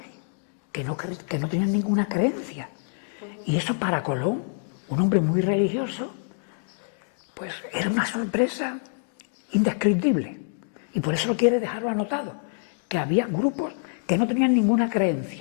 que no tenían ninguna creencia. Y eso para Colón, un hombre muy religioso, pues era una sorpresa indescriptible. Y por eso quiere dejarlo anotado, que había grupos que no tenían ninguna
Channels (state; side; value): silent; right; digital silence